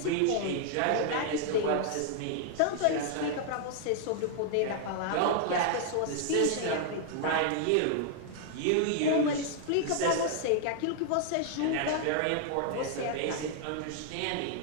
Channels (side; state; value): both; different; correlation 0.00